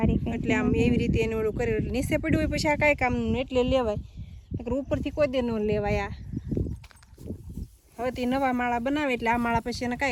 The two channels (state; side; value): identical; both; correlation 1.00